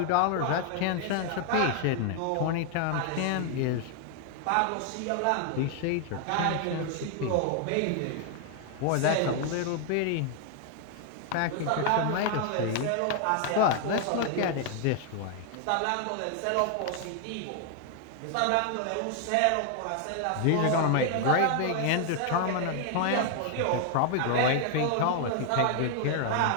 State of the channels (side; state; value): both; different; correlation 0.00